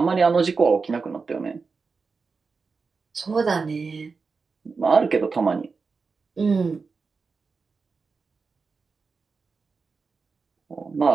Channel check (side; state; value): left; quieter; 4.7 dB